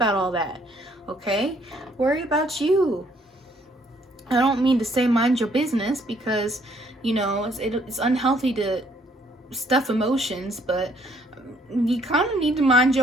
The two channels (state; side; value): normal; both; correlation 0.65